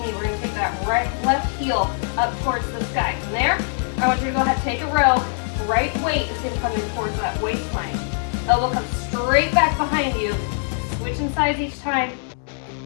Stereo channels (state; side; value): silent; right; 59 dB below the other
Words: knee. We're gonna take that left heel up towards the sky. From there, I want you to go ahead and take a row. Right weight is gonna come in towards that waistline. Elbow comes straight back behind you. Switching sides each time.